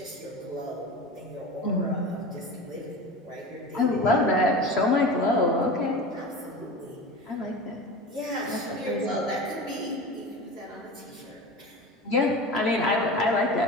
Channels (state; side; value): normal; both; correlation 0.31